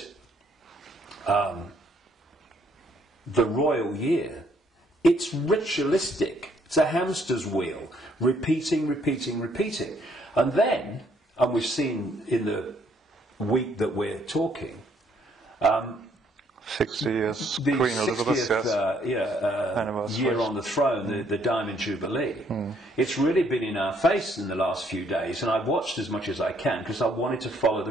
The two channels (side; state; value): both; normal; correlation 0.68